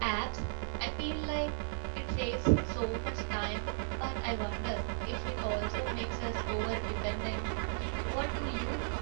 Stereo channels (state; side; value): silent; left; 54 dB below the other